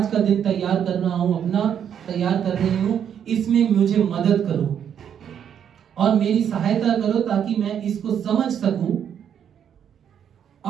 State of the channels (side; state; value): left; quieter; 8.7 dB